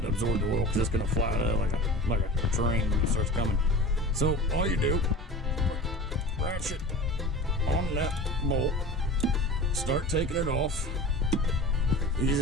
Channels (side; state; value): both; normal; correlation 0.36